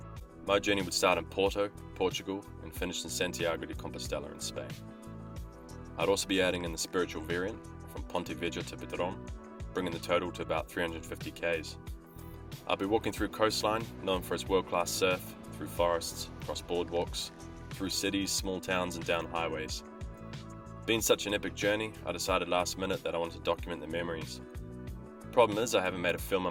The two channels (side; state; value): both; identical; correlation 1.00